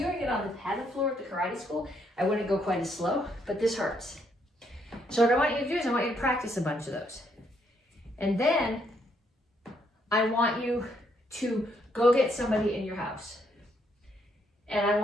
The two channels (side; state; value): both; normal; correlation 0.73